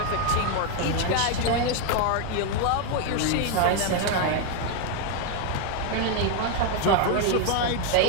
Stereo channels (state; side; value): different; both; correlation 0.01